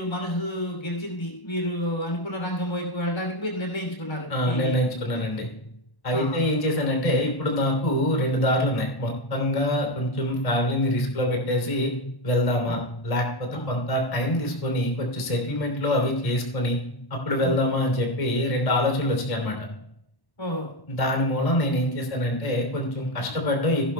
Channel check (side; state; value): right; late; 1.1 ms